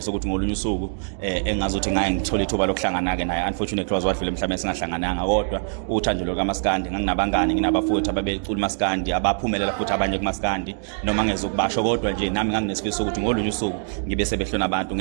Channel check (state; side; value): silent; left; digital silence